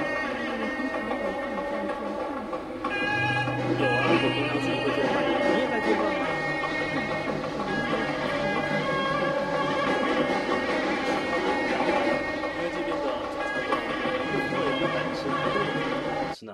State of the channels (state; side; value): identical; both; correlation 1.00